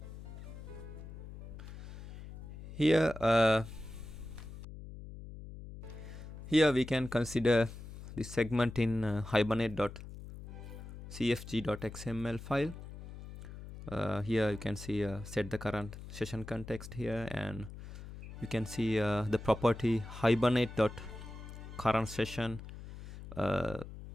Here we can consider this segment in hibernate.cfg.xml file. Here you can see set the current session context here, and you can see the property hibernate.current session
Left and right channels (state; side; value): noise; left; hum, 12 dB below the sound